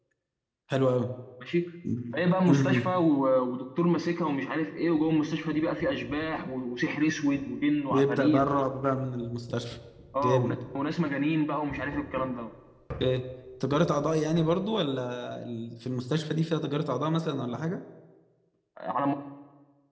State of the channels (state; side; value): identical; both; correlation 1.00